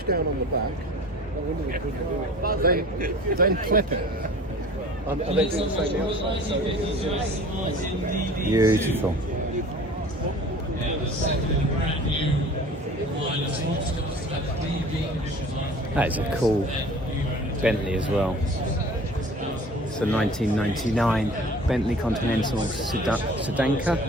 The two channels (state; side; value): normal; both; correlation 0.44